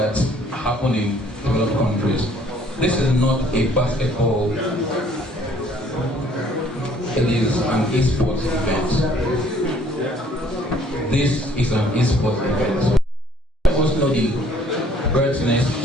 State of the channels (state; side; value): normal; both; correlation 0.59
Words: happen in developed countries. This is not a basketball. It is an esports event. This is an esports event. I also know the Buisness